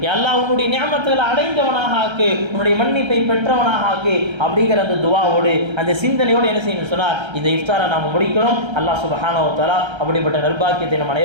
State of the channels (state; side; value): late; left; 1.3 ms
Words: அல்லாஹ் உன்னுடைய நியமத்துகளை அடைந்தவனாக ஆக்கு, உன்னுடைய மன்னிப்பை பெற்றவனாக ஆக்கு அப்படிங்கிற அந்த துவாவோடு அந்த சிந்தனையோடு என்ன செய்யணும் சொன்னால் இந்த இஃப்தாரை நாம் முடிக்கிறோம். அல்லாஹ் சுப்ஹானஹு வ தஆலா அப்படிப்பட்ட நற்பாக்கியத்தை நம்